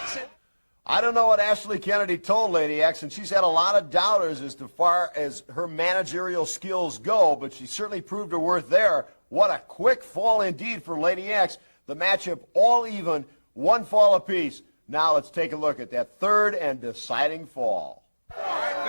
I don't know what Ashley Kennedy told Lady X, and she's had a lot of doubters as far as her managerial skills go, but she certainly proved her worth there. What a quick fall indeed for Lady X. The matchup all even, 1 fall apiece. Now let's take a look at that third and deciding fall. All right,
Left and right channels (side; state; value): both; inverted; correlation -1.00